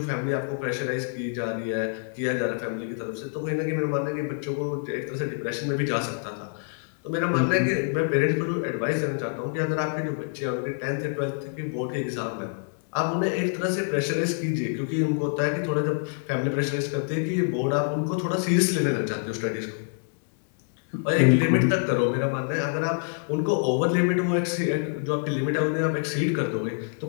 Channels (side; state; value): right; silent; 61 dB below the other